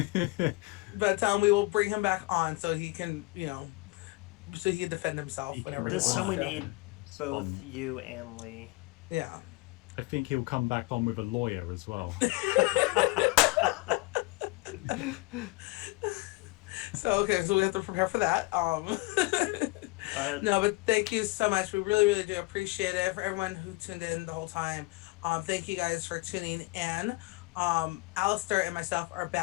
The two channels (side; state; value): right; quieter; 24.2 dB